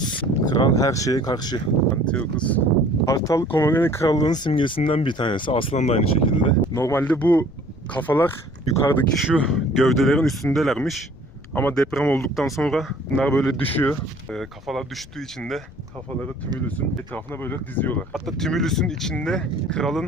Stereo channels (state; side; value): noise; left; rumble, 21 dB below the sound